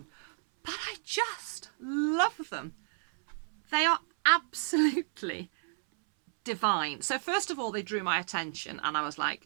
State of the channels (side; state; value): left; silent; 57 dB below the other